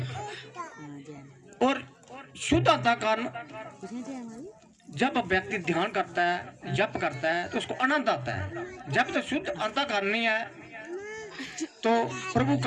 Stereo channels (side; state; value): both; identical; correlation 1.00